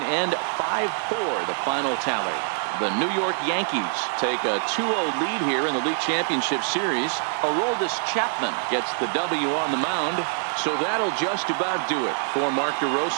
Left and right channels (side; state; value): left; silent; 62 dB below the other